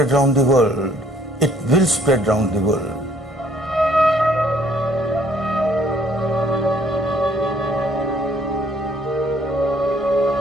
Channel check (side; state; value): both; normal; correlation 0.62